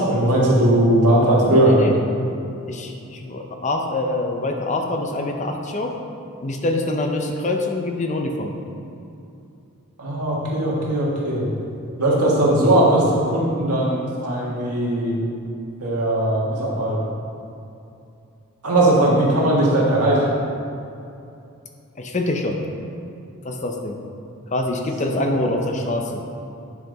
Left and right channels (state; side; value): normal; both; correlation 0.25